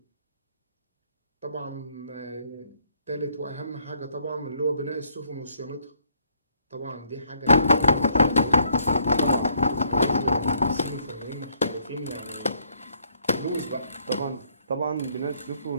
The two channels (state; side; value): inverted; both; correlation -0.68